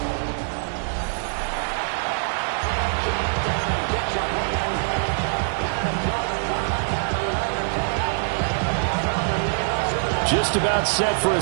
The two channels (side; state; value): left; silent; digital silence